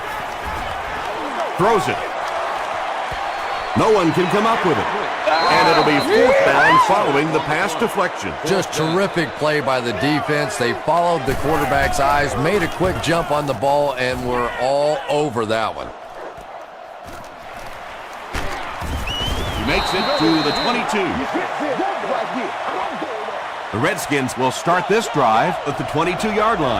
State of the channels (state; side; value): identical; both; correlation 1.00